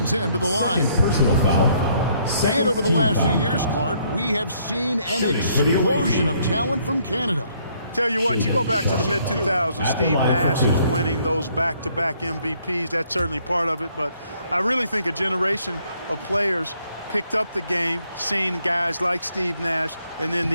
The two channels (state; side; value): inverted; both; correlation -0.67